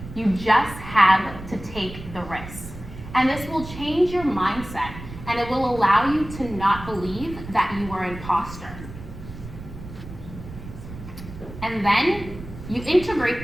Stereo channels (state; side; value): noise; right; rumble, 13 dB below the sound